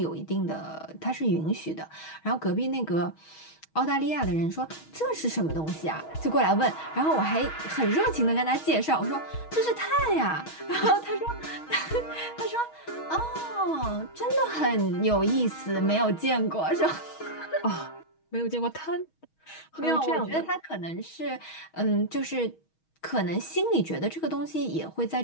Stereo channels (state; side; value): late; right; 6.3 ms